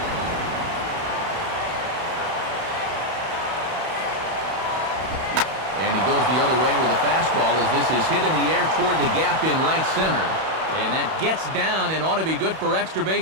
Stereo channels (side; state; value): left; late; 31 ms